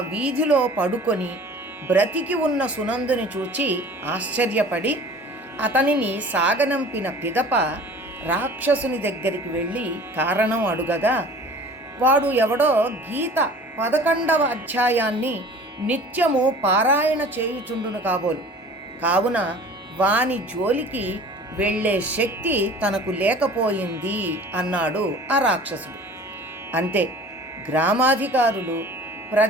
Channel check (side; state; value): both; normal; correlation 0.45